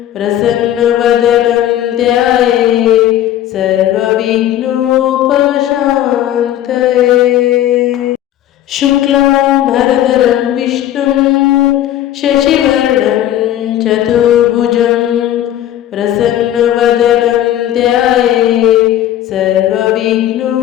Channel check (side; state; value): right; quieter; 12.3 dB